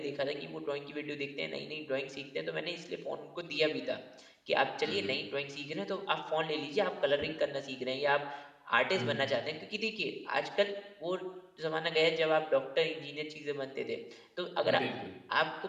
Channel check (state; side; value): identical; both; correlation 1.00